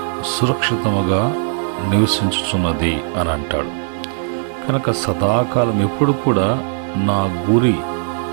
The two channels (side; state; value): left; silent; digital silence